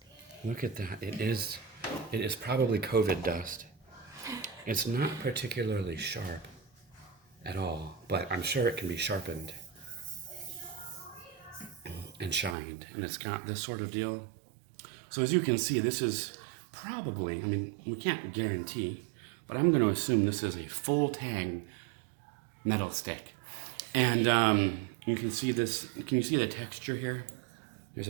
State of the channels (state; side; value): drops out; left; at 12.6 s